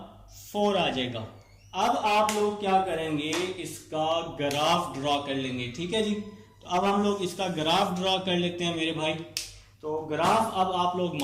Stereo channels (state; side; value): identical; both; correlation 1.00